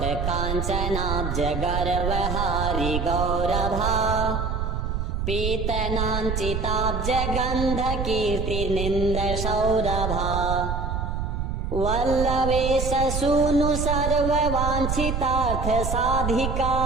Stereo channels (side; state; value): right; noise; rumble, 2 dB below the sound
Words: काञ्चनाब्ज गर्वहारि गौरभा पीतनाञ्चिताब्ज गन्ध कीर्तिनिन्द सौरभा वल्लवेश सूनु सर्ववाञ्छितार्थ साधिका